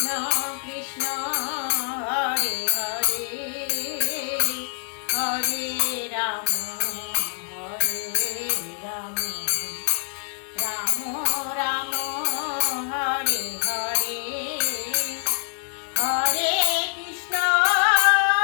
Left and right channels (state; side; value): silent; right; digital silence